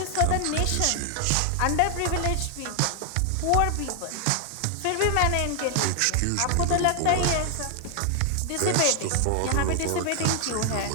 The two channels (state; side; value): different; both; correlation 0.00